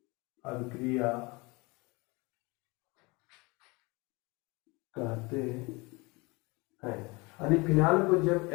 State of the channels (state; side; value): quieter; right; 26.0 dB